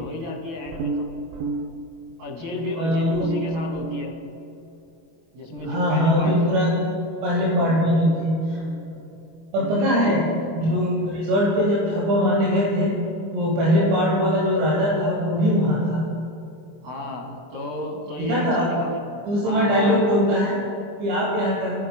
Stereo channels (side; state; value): left; late; 25 ms